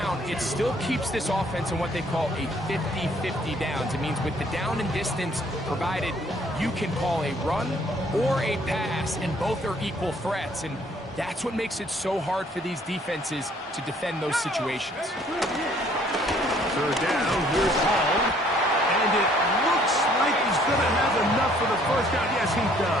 it still keeps this offense in what they call a 50-50 downs. It means with the down and distance provided, you can call a run or a pass, and both are equal threats. And that's what makes it so hard for these defenses to defend those situations. Third down, here's Hall. And it looks like he's going to have enough for the first down. Yes, he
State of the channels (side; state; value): both; normal; correlation 0.61